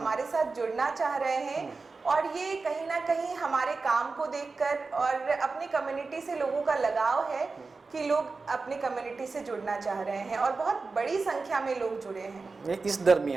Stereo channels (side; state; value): left; quieter; 4.1 dB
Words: साथ जुड़ना चाह रहे हैं, और ये कहीं ना कहीं हमारे काम को देखकर, और अपनी कम्युनिटी से लोगों का लगाव है कि लोग अपनी कम्युनिटी से जुड़ना चाह रहे हैं, और बहुत बड़ी संख्या में लोग जुड़े हैं। इस